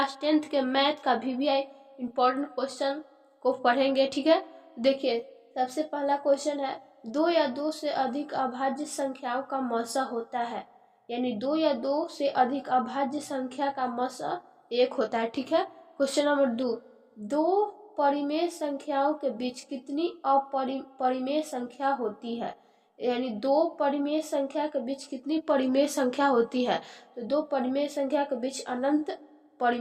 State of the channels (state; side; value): identical; both; correlation 1.00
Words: 10th के मैथ का वीवीआई इम्पोर्टेंट क्वेश्चन को पढ़ेंगे। ठीक है, देखिए सबसे पहला क्वेश्चन है, दो या दो से अधिक अभाज्य संख्याओं का मौसा होता है। यानी दो या दो से अधिक अभाज्य संख्या का मौसा एक होता है। ठीक है, क्वेश्चन नंबर 2, दो परिमेय संख्याओं के बीच कितनी अपरिमेय संख्या होती है। यानी दो परिमेय संख्या के बीच कितनी परिमेय संख्या होती है। तो दो परिमेय संख्या के बीच अनंत